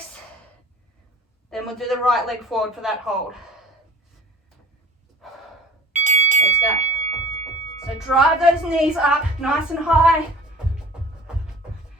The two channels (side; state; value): both; normal; correlation 0.45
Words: Then we'll do the right leg forward for that hold. Let's go. So drive those knees up nice and high.